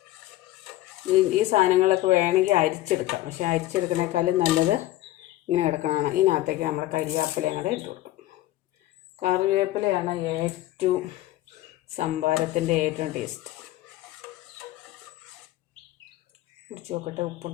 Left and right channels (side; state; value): right; quieter; 15.7 dB